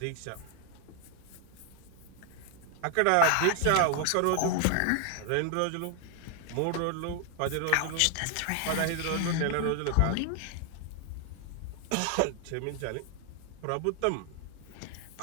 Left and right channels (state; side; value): different; both; correlation 0.00